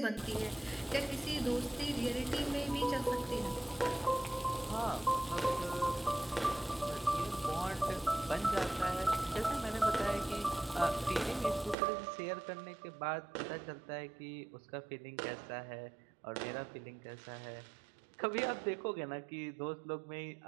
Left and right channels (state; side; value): drops out; left; at 11.8 s